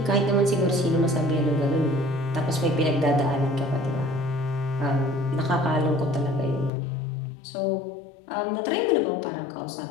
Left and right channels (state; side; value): drops out; right; at 6.7 s